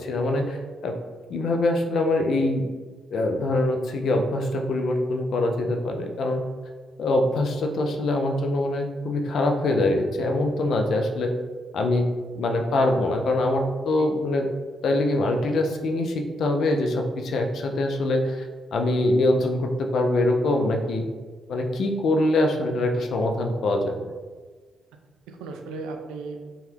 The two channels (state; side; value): normal; both; correlation 0.78